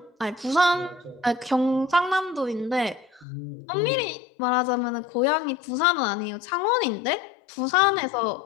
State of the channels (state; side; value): drops out; right; at 3.2 s